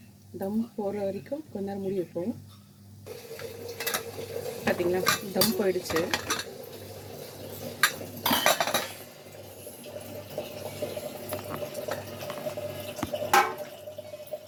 தம் போடுற வரைக்கும் கொஞ்ச நேரம் மூடி வைப்போம். பார்த்தீங்களா, தம் போயிடுச்சு.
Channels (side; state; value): both; identical; correlation 1.00